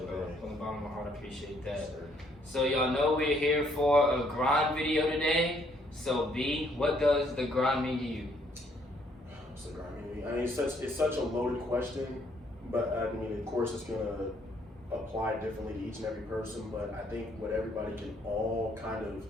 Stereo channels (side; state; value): both; normal; correlation 0.67